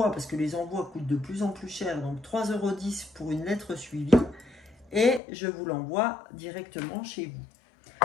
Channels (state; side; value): drops out; right; at 5.2 s